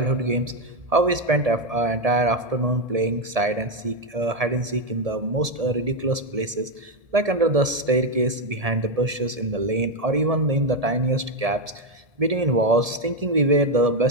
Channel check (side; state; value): left; late; 1.7 ms